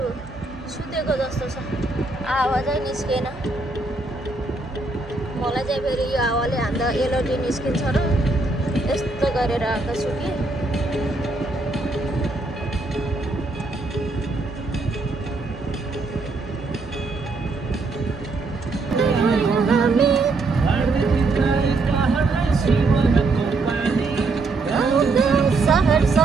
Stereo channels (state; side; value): quieter; left; 3.3 dB